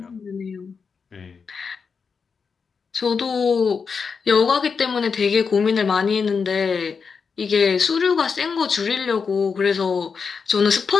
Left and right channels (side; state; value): right; quieter; 5.6 dB